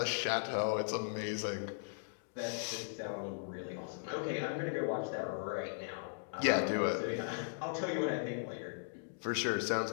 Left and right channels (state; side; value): silent; right; digital silence